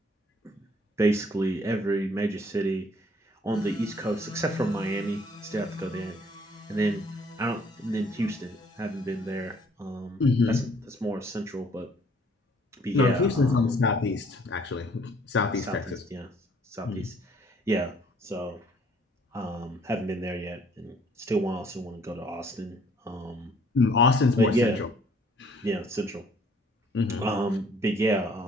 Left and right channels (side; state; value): both; normal; correlation 0.60